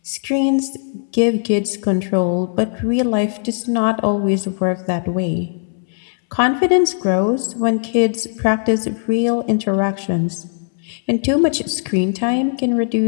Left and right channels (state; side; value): silent; right; 66 dB below the other